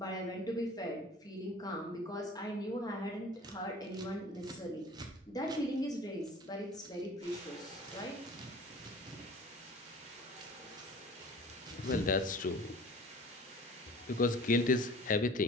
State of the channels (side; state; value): both; normal; correlation 0.45